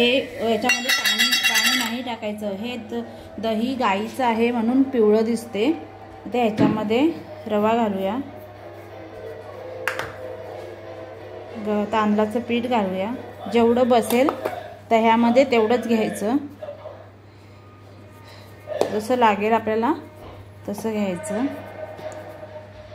नाही टाकायचं। हे दही गाईचं आहे म्हणून पिवळं दिसते। आता ह्याच्यामध्ये रवा घालूया, तांदळाचं पीठ घालूया, जेवढं बसेल दह्यामध्ये तेवढंच घ्यायचं, जसं लागेल आपल्याला तसं घ्यायचं।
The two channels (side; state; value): both; identical; correlation 1.00